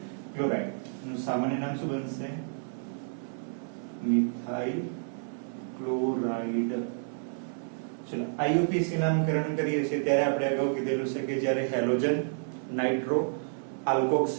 ક્લોરાઇડ. એનું સામાન્ય નામ શું બનશે મિથાઇલ ક્લોરાઇડ. ચલો આઈયુપીસી નામકરણ કરીએ છીએ ત્યારે આપણે અગાઉ કીધેલું છે કે જ્યારે હેલોજન નાઇટ્રો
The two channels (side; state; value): left; silent; digital silence